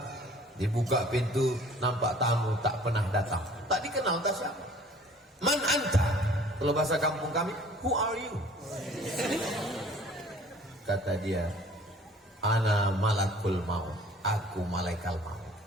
Dibuka pintu, nampak tamu tak pernah datang, tak dikenal, tak siapa. Man anta? Kalau bahasa kampung kami, who are you? Kata dia, ana malakul maut, aku malaikat maut.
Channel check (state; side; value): normal; both; correlation 0.51